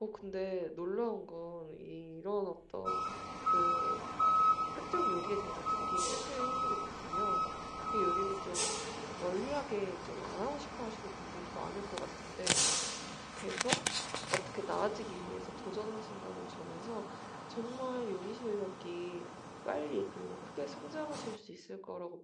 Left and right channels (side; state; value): both; identical; correlation 1.00